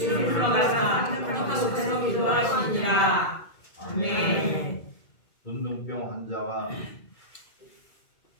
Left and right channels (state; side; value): late; right; 2.2 ms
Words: 올라가서 한적한 곳에서 기도하시니라. 아멘. 문둥병 환자가